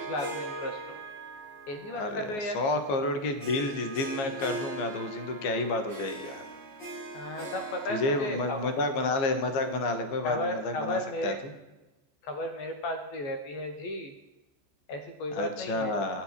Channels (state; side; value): late; right; 15 ms